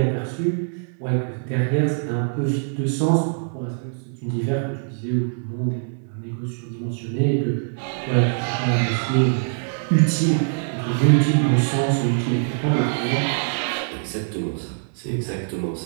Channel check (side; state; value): left; silent; digital silence